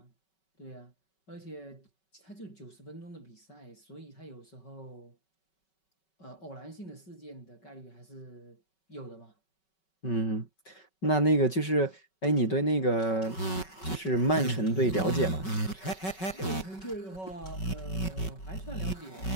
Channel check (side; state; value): right; late; 5.3 ms